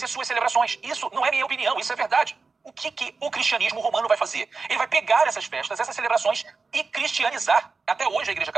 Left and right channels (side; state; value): left; quieter; 4.3 dB